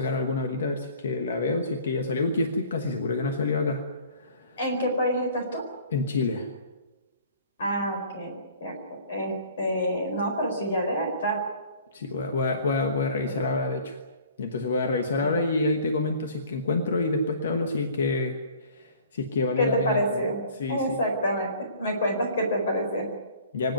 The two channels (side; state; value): both; inverted; correlation -0.50